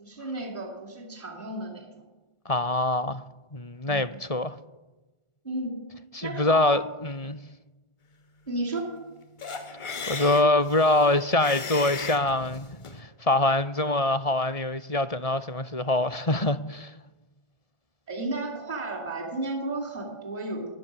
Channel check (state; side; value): late; right; 1.4 ms